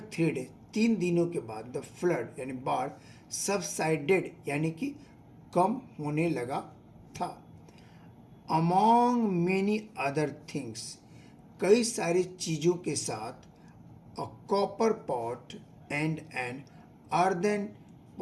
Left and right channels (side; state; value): both; identical; correlation 1.00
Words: 3 days, 3 दिनों के बाद, द फ्लड यानी बाढ़, सबसाइडेड यानी कि कम होने लगा था। अमॉन्ग मेनी अदर थिंग्स, कई सारी चीज़ों के साथ, a copper pot and an earthen